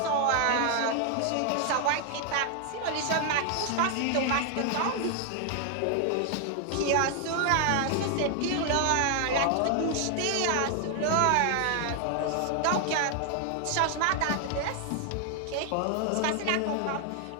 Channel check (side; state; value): both; different; correlation 0.00